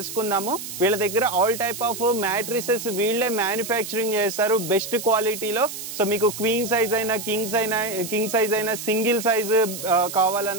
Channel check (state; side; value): noise; right; hiss, 9 dB below the sound